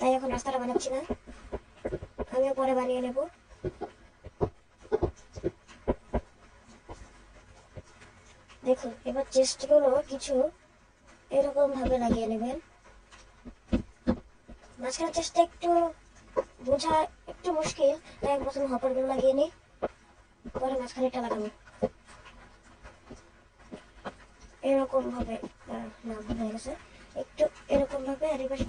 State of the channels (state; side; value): identical; both; correlation 1.00